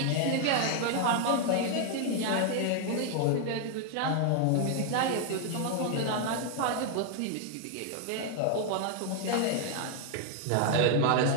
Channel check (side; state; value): both; different; correlation 0.00